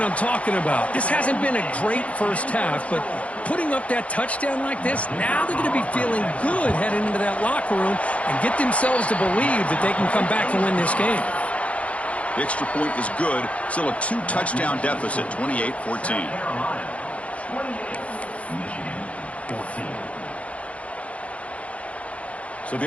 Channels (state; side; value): late; right; 0.064 ms